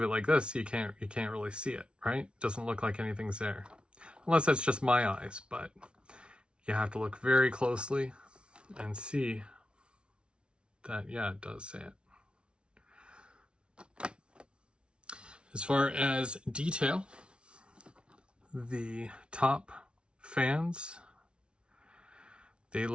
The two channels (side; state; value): left; late; 0.057 ms